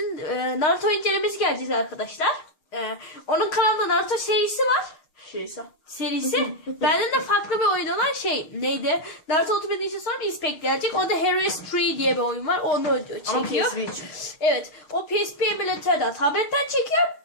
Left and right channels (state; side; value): late; right; 6.5 ms